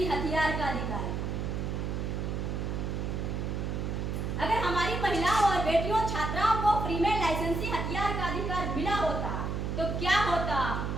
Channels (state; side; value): noise; right; hum, 2 dB below the sound